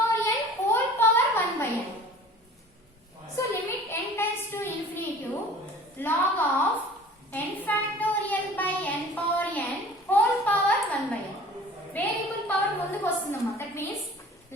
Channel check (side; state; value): both; normal; correlation 0.45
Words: n whole power 1/n. So limit n times to infinity log of n factorial by n power n whole power 1/n. Variable power ముందుకు వస్తుందమ్మా. That means